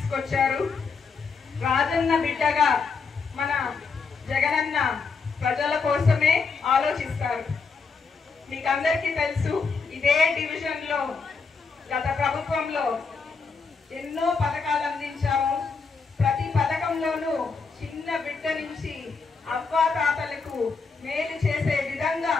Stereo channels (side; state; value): right; quieter; 4.9 dB